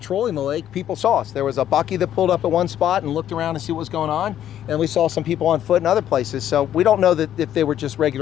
the lake, people saw us. There was a bucky that pulled up at one spot and looked around to see what was going on. And we saw some people on foot in other places. So we don't know that if they were just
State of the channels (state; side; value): quieter; right; 11.0 dB